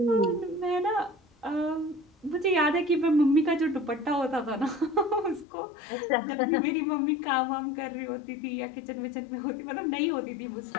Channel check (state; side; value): drops out; right; at 5.5 s